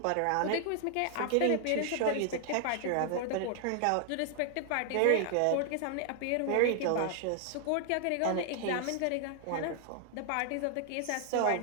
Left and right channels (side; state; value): both; different; correlation 0.00